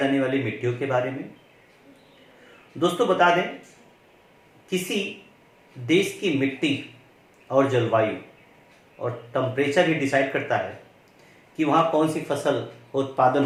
वाली मिट्टियों के बारे में। दोस्तों बता दें, किसी देश की मिट्टी और जलवायु और टेम्परेचर ही डिसाइड करता है कि वहाँ कौन सी फसल उत्पादन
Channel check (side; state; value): both; identical; correlation 1.00